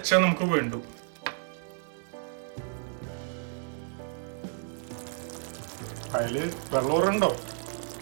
നമുക്ക് വേണ്ടു. അതില് വെള്ളമുണ്ടോ?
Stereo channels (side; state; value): left; silent; 57 dB below the other